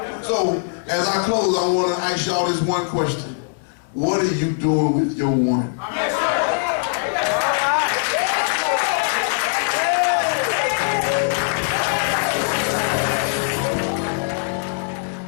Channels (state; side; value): silent; right; 65 dB below the other